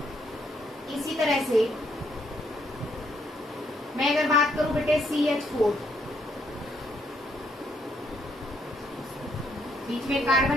इसी तरह से मैं अगर बात करूं बेटे CH4, बीच में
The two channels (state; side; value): normal; both; correlation 0.72